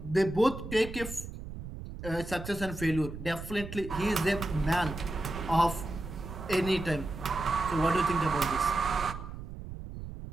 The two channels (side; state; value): right; noise; rumble, 10 dB below the sound